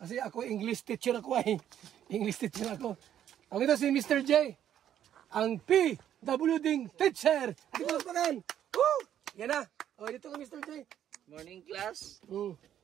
ako English teacher ako ay. English teacher ako. Ako ito si Mr. J. Ang PWD teacher. Ito ko magpakan. Woo! Yan na. O, dito ka Mr. J. Morning class.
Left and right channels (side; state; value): left; quieter; 10.5 dB